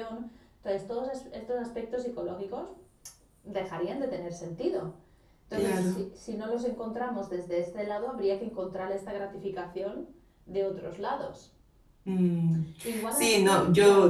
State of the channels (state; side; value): identical; both; correlation 1.00